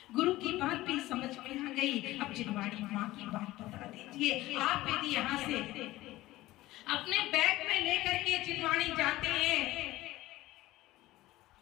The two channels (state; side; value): quieter; right; 17.3 dB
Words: गुरु की बात भी समझ में आ गई, अब जिनवाणी माँ की बात बता दीजिए। आप यदि यहाँ से अपने बैग में लेकर के जिनवाणी जाते हैं